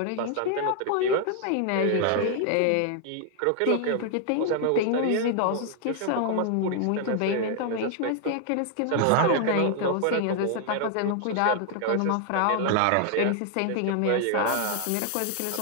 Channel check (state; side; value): different; both; correlation 0.00